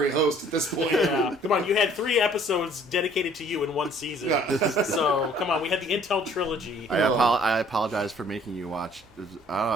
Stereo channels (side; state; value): both; normal; correlation 0.57